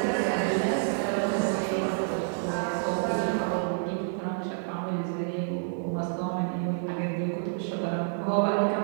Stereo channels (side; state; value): left; silent; 56 dB below the other